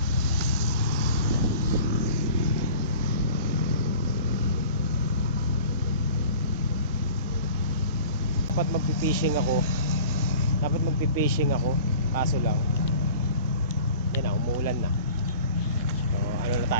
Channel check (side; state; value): both; inverted; correlation -0.43